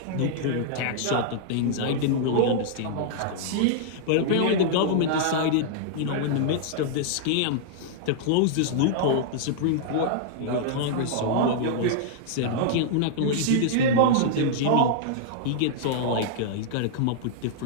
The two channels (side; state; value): both; different; correlation -0.01